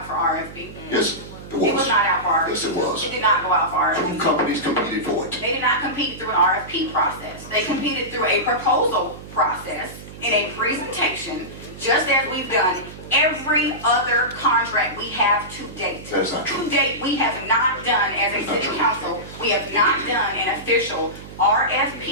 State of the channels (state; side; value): noise; right; hum, 15 dB below the sound